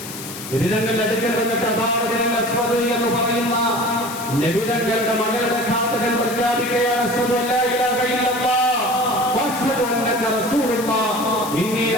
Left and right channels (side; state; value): left; noise; hiss, 11 dB below the sound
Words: നബിതങ്ങളുടെ അടുക്കൽ വന്നിട്ട് ഹബാറുൽ അസ്വദ് എന്ന് പറയുന്ന നബിതങ്ങളുടെ മകളുടെ ഘാതകൻ പ്രഖ്യാപിക്കുകയാണ്, അശ്ഹദു അല്ലാ ഇലാഹ ഇല്ലല്ലാഹ് വഅശ്ഹദു അന്നക റസൂലുള്ളാഹ് ഇന്നി